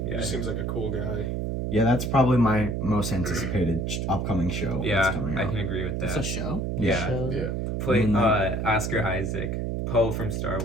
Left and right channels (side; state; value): right; noise; hum, 1 dB below the sound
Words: He Yeah. just seems like a cool guy. Yeah, that's probably my most anticipated upcoming show. Yeah, that's coming I out. can agree with It's that. a show. Yeah. Shows Yeah. it? Play Moon Knight. Oscar Isaac. Poe from Star